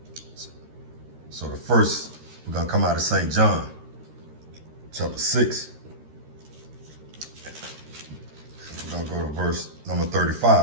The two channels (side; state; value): left; late; 13 ms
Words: So the first, we're going to come out of St. John, chapter 6. We're going to go to verse number